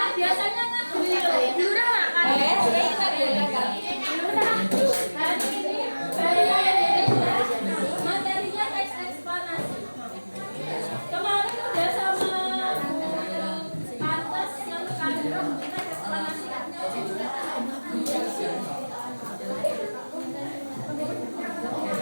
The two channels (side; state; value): both; inverted; correlation -1.00